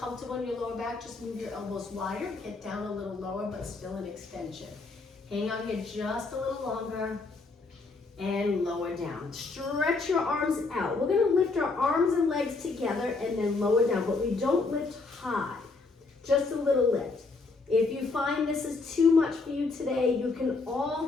in your lower back, just move your elbows wider, get down a little lower, but still in extension. Hang on here just a little longer. And lower down. Stretch your arms out. We're gonna lift our arms and legs together and then lower down, but we don't lift high, just a little lift. If you find this is too much for you today, you can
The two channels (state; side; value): quieter; right; 3.9 dB